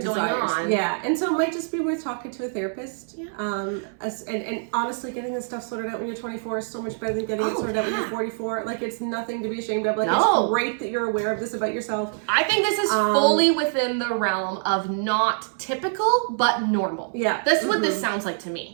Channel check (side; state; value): left; silent; 62 dB below the other